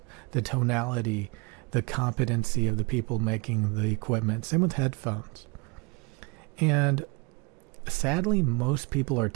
the tonality, the competency of the people making the equipment. Same with headphones. And sadly, most people are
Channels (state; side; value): quieter; left; 29.4 dB